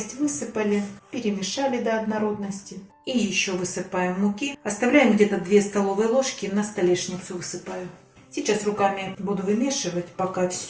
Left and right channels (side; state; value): both; identical; correlation 1.00